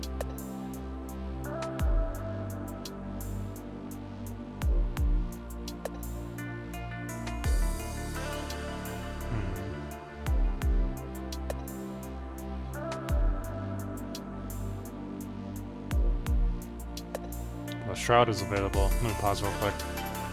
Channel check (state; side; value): identical; both; correlation 1.00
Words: The Shroud is available. Let me pause real quick.